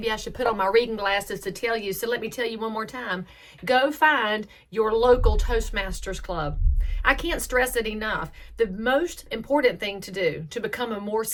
I should put on my reading glasses to tell you, so let me tell you one more time. Go find your local Toastmasters club. I can't stress it enough. The most important thing to do to become a more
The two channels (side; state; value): both; identical; correlation 1.00